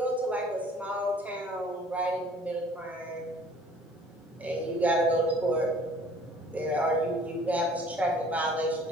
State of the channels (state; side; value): normal; both; correlation 0.53